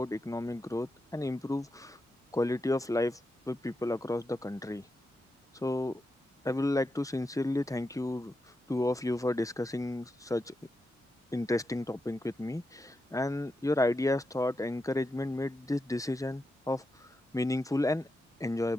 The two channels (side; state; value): both; normal; correlation 0.87